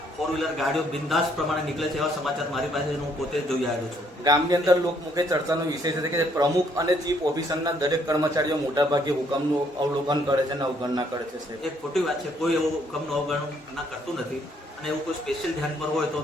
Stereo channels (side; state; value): both; normal; correlation 0.68